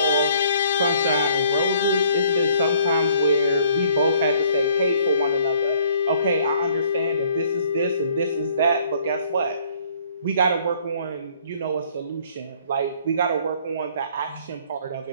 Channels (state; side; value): inverted; both; correlation -0.60